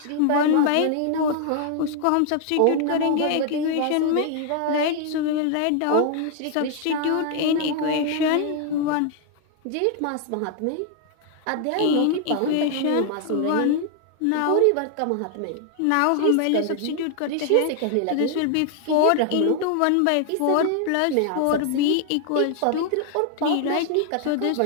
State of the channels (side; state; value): both; different; correlation 0.00